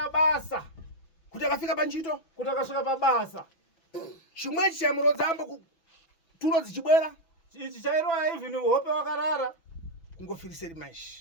basa. Kuti akafika panchito. Kuti akasvika pabasa. Chimwechi chamurodza ambo tulo dzichibwera. Ichi chairoya even hope wakarara. Kungofiriseri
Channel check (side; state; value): right; late; 6.0 ms